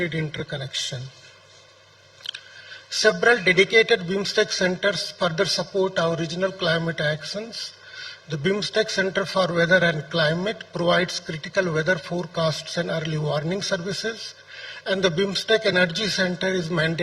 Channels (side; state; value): both; identical; correlation 1.00